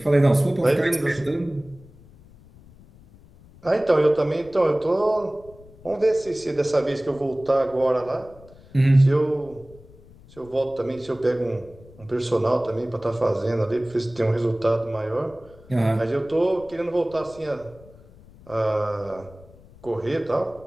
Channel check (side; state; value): left; noise; rumble, 23 dB below the sound